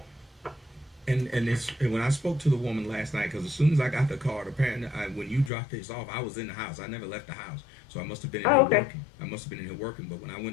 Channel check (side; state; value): right; drops out; at 5.5 s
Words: And when I spoke to the woman last night, because as soon as I got the card, apparently when you dropped this off, I was in the house. I never left the house, so I must have been in here working. I must have been in here working. But when I